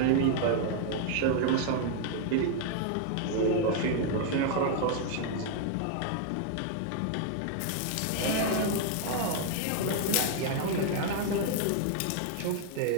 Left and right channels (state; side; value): different; both; correlation 0.00